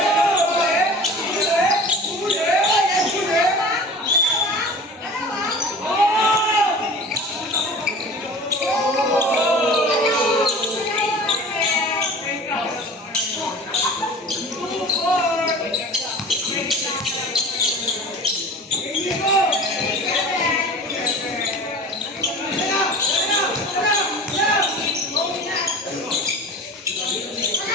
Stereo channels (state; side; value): normal; both; correlation 0.39